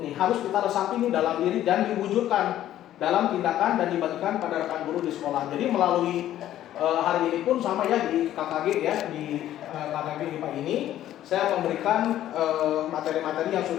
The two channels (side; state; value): right; quieter; 12.6 dB